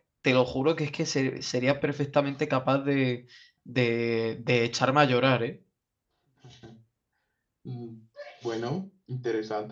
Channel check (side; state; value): both; identical; correlation 1.00